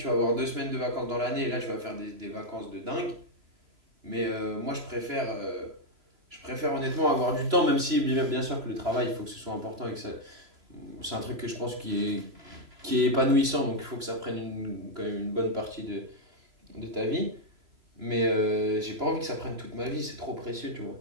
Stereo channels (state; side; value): late; left; 3.0 ms